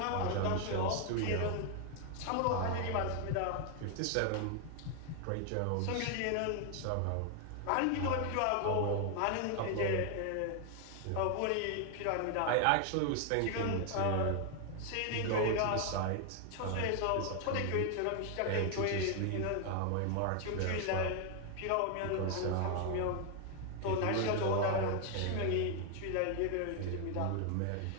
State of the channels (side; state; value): both; different; correlation 0.00